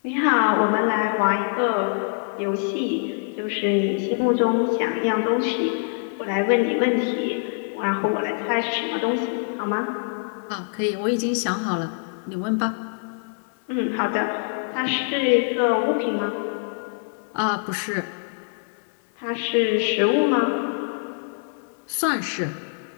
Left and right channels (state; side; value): silent; right; 62 dB below the other